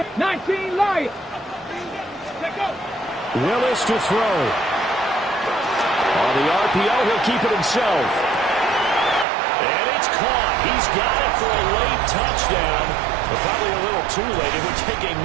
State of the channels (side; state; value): left; drops out; at 9.2 s